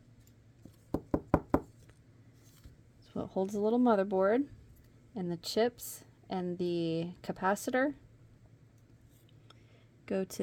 It's what holds the little motherboard, and the chips and the capacitor go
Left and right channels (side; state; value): both; identical; correlation 1.00